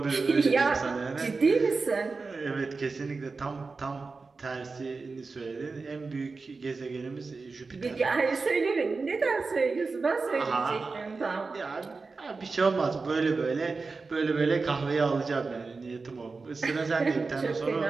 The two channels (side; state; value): left; quieter; 4.2 dB